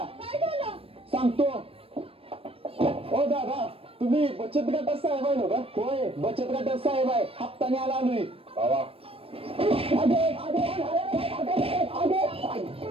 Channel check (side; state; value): left; late; 0.28 ms